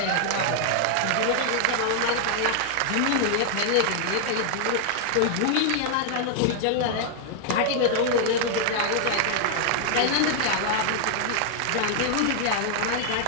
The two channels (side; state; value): both; different; correlation -0.01